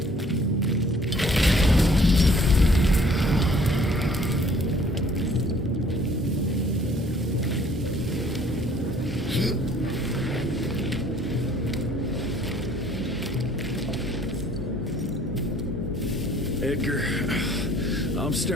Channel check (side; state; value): both; normal; correlation 0.57